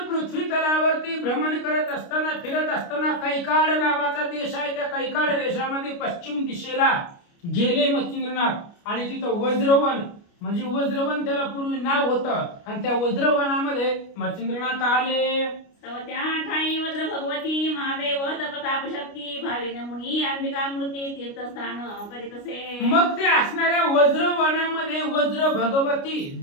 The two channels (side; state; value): right; late; 29 ms